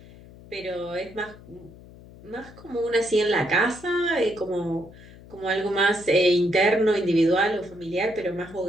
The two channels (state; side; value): noise; left; hum, 20 dB below the sound